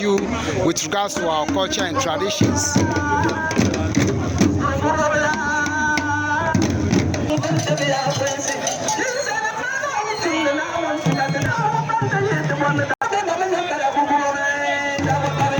with regards to our culture and traditions.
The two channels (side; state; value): both; identical; correlation 1.00